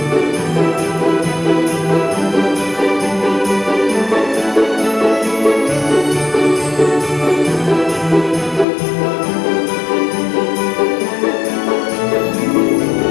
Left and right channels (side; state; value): right; drops out; at 8.7 s